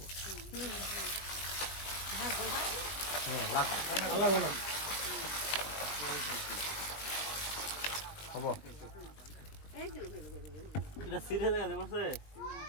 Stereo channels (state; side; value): late; right; 20 ms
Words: আল্লাহ না হবো এটা সিরে জায়গা দেবছে